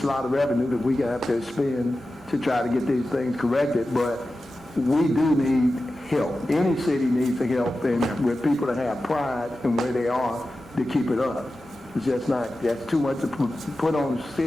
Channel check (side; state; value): both; normal; correlation 0.93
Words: a lot of revenue that we have to spend to try to get these things corrected, but we do need help. Any city needs the help, and with people that have pride in where they are to keep it up. It's just not, that's too much to put on the